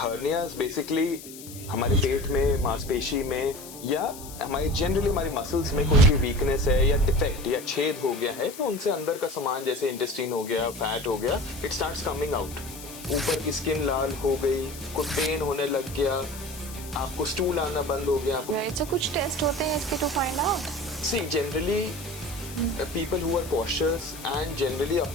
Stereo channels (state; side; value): noise; left; hiss, 15 dB below the sound